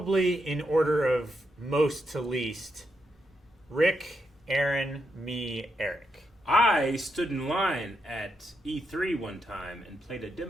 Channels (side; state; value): both; normal; correlation 0.82